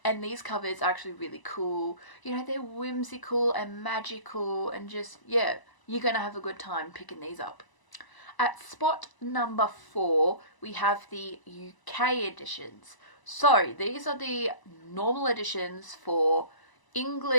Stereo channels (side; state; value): right; late; 1.0 ms